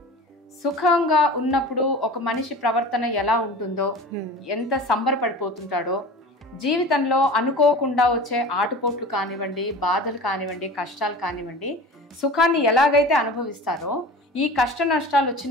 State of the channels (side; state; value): both; normal; correlation 0.37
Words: సుఖంగా ఉన్నప్పుడు ఒక మనిషి ప్రవర్తన ఎలా ఉంటుందో, ఎంత సంబరపడిపోతుంటాడో, జీవితంలో అనుకోకుండా వచ్చే ఆటుపోట్లు కానివ్వండి, బాధలు కానివ్వండి, కష్టాలు కానివ్వండి, సుఖాన్ని ఎలాగైతే అనుభవిస్తారో, ఈ కష్ట నష్టాలు